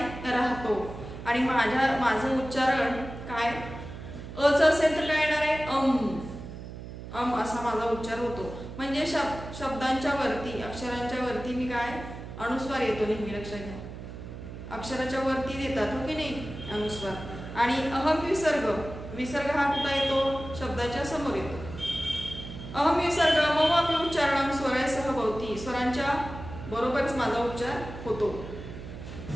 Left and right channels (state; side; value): noise; right; hum, 11 dB below the sound